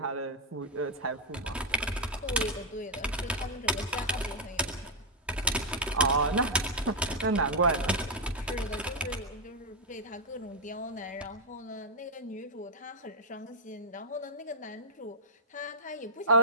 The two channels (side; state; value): both; normal; correlation -0.03